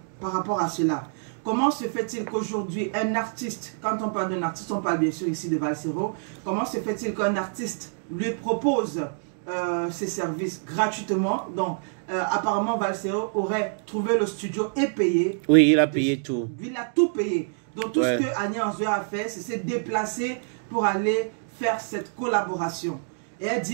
par rapport à cela. Comment se fait-il qu'aujourd'hui, un artiste, quand on parle d'un artiste, on parle bien sûr ici de Valsero, comment se fait-il qu'un artiste lui propose ses services gratuitement? Donc, apparemment, Valsero aurait trouvé le studio et payé. Oui, il a payé tout. Il a tout payé. Donc, tout ce que Annie Anzouer a fait, c'est se déplacer pour aller faire cette collaboration. Et elle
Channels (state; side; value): silent; left; digital silence